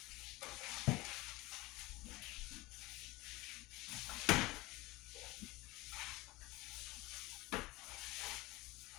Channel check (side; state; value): right; quieter; 20.9 dB